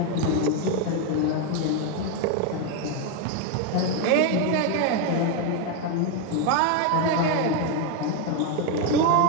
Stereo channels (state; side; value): different; both; correlation 0.02